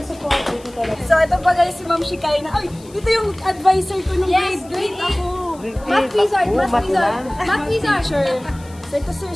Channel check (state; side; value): noise; left; hiss, 24 dB below the sound